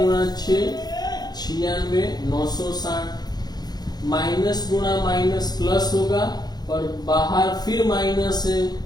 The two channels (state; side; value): late; right; 0.19 ms